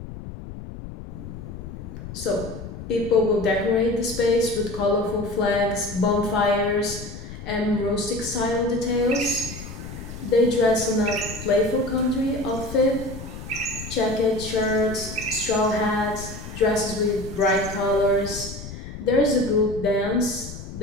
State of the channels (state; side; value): noise; left; rumble, 11 dB below the sound